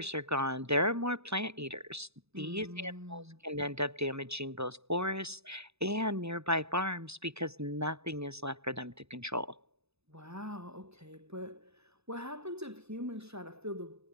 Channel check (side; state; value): left; late; 0.79 ms